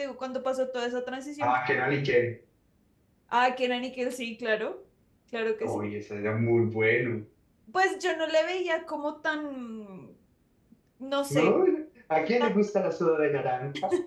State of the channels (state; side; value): identical; both; correlation 1.00